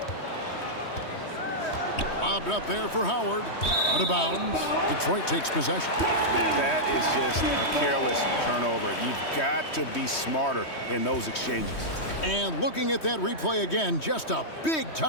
Lobbed up there for Howard. Out of bounds. Detroit takes possession. That is just a careless turnover. You've got to be smarter in those exchanges. And looking at that replay again, just a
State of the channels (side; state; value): right; late; 3.1 ms